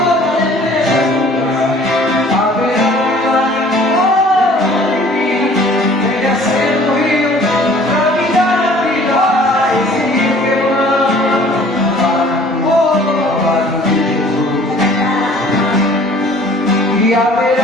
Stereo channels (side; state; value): both; normal; correlation 0.52